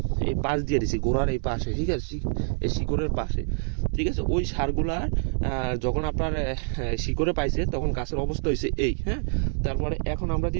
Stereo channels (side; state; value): left; silent; digital silence